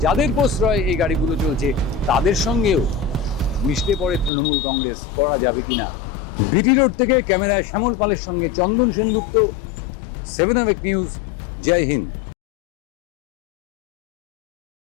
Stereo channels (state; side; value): drops out; right; at 4.3 s